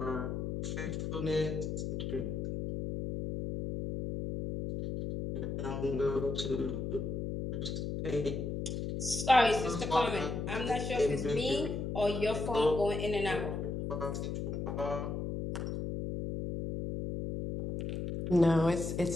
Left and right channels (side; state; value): left; noise; hum, 3 dB below the sound